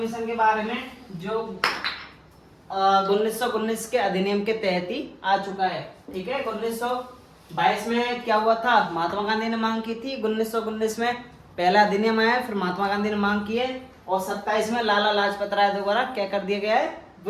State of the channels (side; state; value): both; identical; correlation 1.00